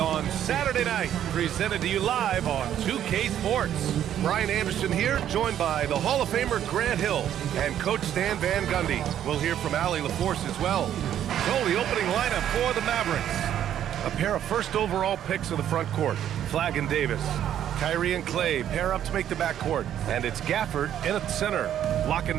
Saturday night, presented to you live on 2K Sports. Brian Anderson here, joined by the Hall of Famer Grant Hill and Coach Stan Van Gundy. We'll hear from Allie LaForce as well. So the opening lineup for the Mavericks. A pair of first overall picks of the front court, Flagg and Davis. Kyrie and Clay pair up to make the backcourt, and it's Gafford in at the center, locking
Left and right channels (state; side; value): quieter; left; 10.6 dB